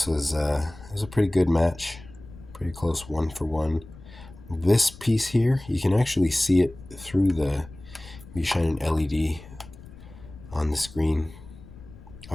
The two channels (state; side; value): noise; left; rumble, 18 dB below the sound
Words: was it was a pretty good match, pretty close 1-for-1. This piece here, you can actually see it through you shine an LED on the screen. I